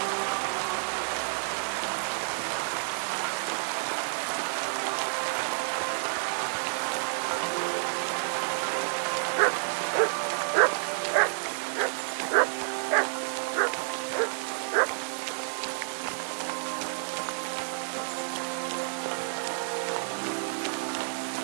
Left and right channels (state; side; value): silent; left; digital silence